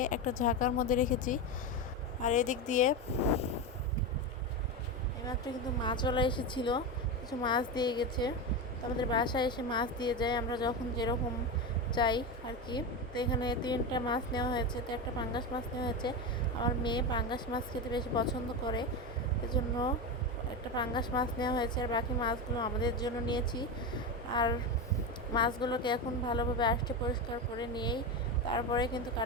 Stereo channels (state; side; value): normal; both; correlation 0.17